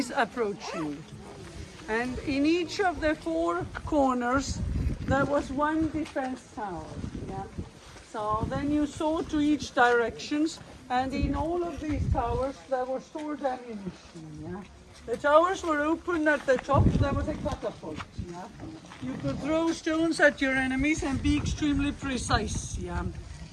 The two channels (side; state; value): both; identical; correlation 1.00